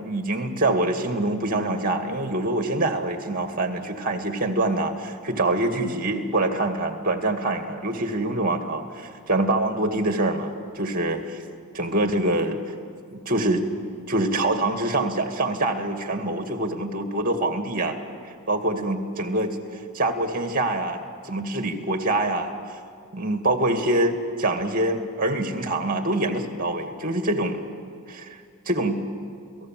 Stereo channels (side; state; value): both; normal; correlation 0.01